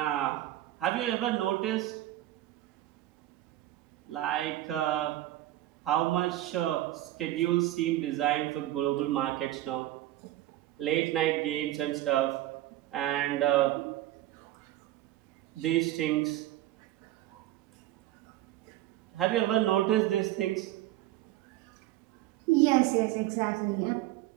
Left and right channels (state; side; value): quieter; left; 14.8 dB